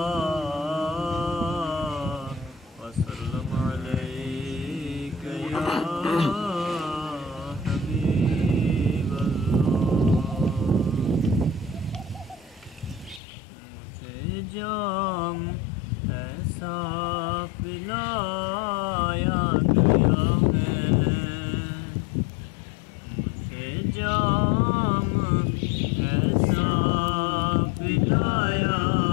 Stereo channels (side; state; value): right; drops out; at 13.2 s